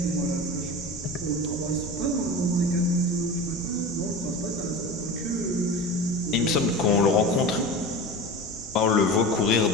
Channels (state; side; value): normal; both; correlation 0.31